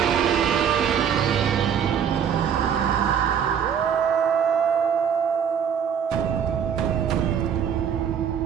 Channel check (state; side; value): quieter; left; 8.0 dB